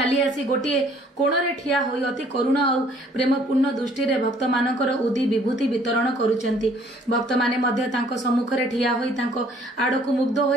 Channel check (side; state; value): both; normal; correlation 0.60